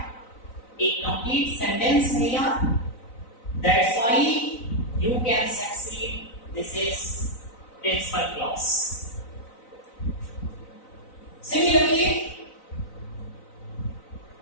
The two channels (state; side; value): late; right; 3.9 ms